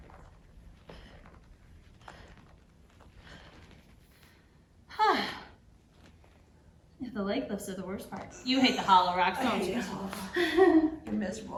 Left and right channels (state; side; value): identical; both; correlation 1.00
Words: The leg lifts are the worst part. You hate the hollow rocks, don't you? You're